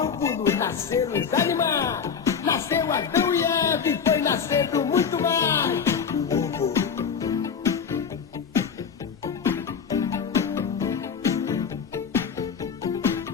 nasceram os animais. Nasceu Adão e Eva e foi nascendo muito mais. O ovo.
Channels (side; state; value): right; quieter; 6.6 dB